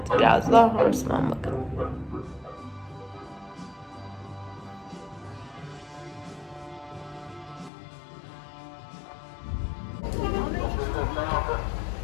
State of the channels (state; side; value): drops out; right; at 7.7 s